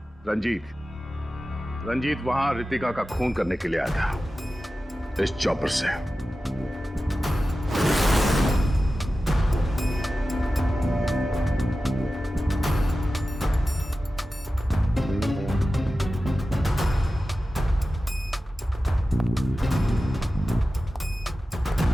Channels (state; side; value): normal; both; correlation 0.94